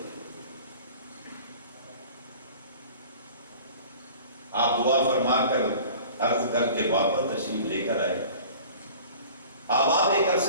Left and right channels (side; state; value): both; inverted; correlation -0.44